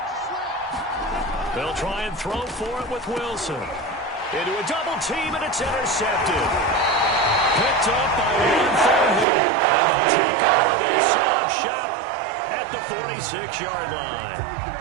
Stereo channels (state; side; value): drops out; left; at 9.2 s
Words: They'll try and throw for it with Wilson. Into a double team, and it's intercepted. Picked up by one forward. And they take over the stop shop at the 46-yard line.